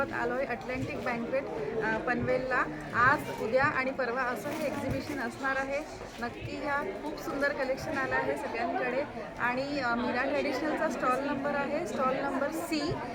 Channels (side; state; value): both; identical; correlation 1.00